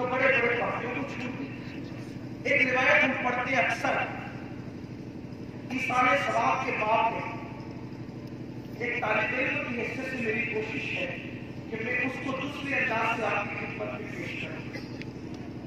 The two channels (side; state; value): both; identical; correlation 1.00